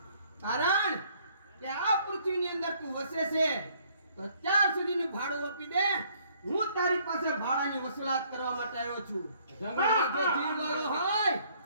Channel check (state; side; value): inverted; both; correlation -0.63